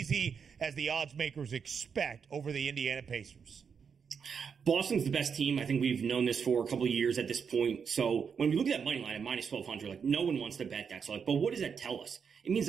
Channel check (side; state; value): left; quieter; 6.5 dB